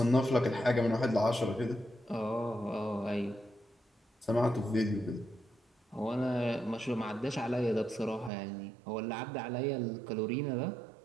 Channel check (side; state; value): left; drops out; at 8.3 s